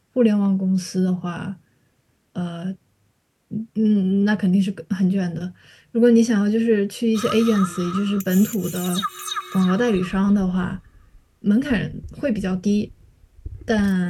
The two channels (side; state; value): both; identical; correlation 1.00